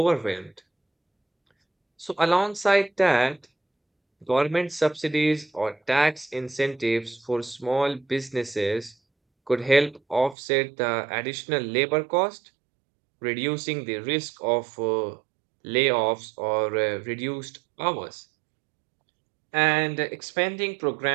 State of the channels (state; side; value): drops out; left; at 10.4 s